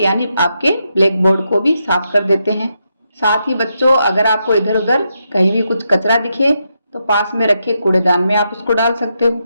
आपके ब्लैक बोर्ड को भी साफ कर देते हैं। साथ ही बच्चों, अगर आपको इधर उधर कहीं भी कुछ कचरा दिखे तो पास में रखे कूड़ेदान में आप उसको डाल सकते हो।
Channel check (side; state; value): both; inverted; correlation -0.83